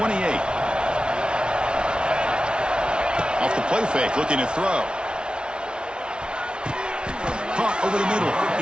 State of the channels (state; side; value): late; left; 0.055 ms